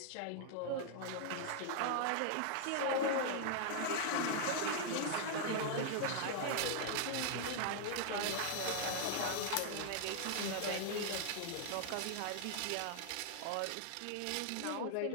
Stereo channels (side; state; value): both; different; correlation 0.00